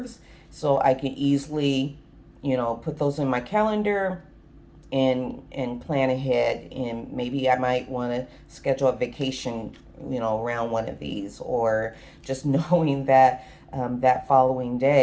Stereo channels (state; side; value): identical; both; correlation 1.00